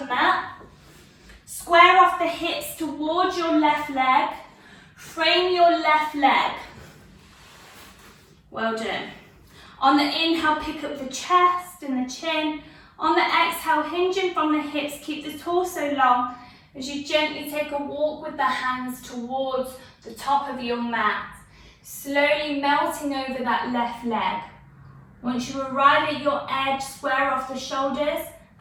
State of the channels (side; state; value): both; identical; correlation 1.00